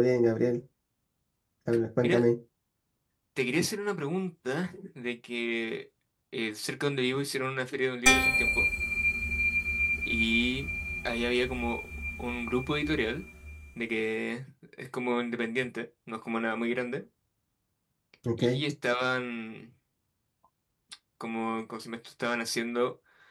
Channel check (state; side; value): identical; both; correlation 1.00